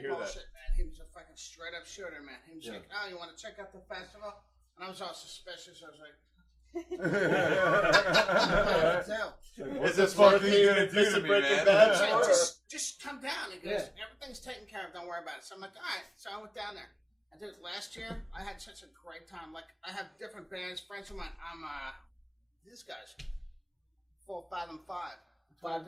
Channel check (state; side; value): identical; both; correlation 1.00